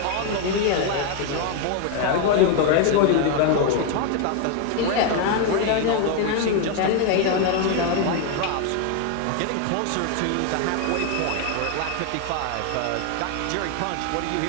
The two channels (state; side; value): different; both; correlation 0.01